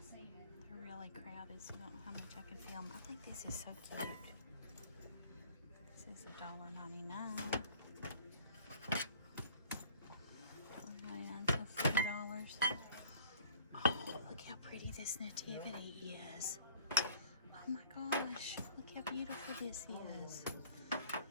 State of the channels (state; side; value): inverted; both; correlation -0.53